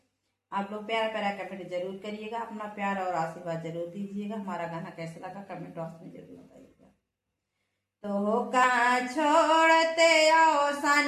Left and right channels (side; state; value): both; identical; correlation 1.00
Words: आप लोग प्यारा प्यारा कमेंट जरूर करिएगा, अपना प्यार और आशीर्वाद जरूर दीजिएगा। हमारा गाना कैसा लगा कमेंट बॉक्स में जरूर बताइएगा। तो का छोड़ते